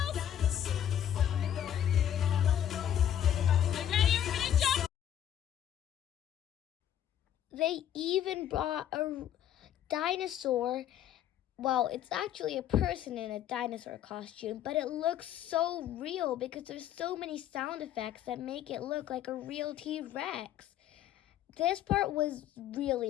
They even brought a dinosaur. Well, it's actually a person in a dinosaur costume, but it looks so real because there's so many sound effects that make it look like a real T-Rex. This part was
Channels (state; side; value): quieter; right; 10.6 dB